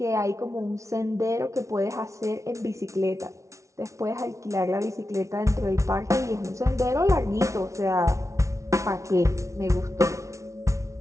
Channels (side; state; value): left; late; 0.14 ms